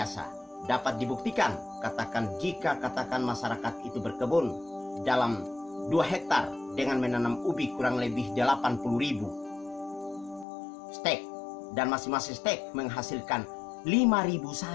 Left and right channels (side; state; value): right; drops out; at 10.5 s